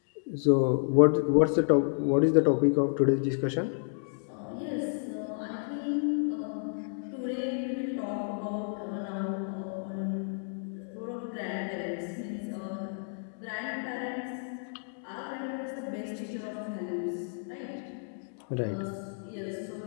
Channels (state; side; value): silent; right; digital silence